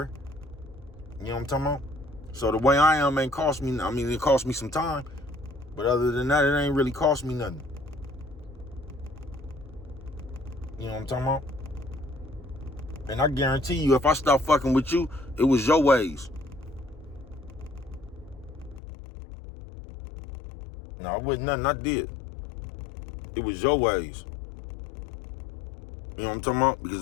You know what I'm talking about? So the way I am ain't cost me, it cost me some time. But other than that, it ain't really cost me nothing. You know what I'm talking about? And I guarantee you, if I stop fucking with you, it was your ways. No, it wasn't nothing I did. It was your ways. You know what I'm talking about? Because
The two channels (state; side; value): drops out; right; at 18.8 s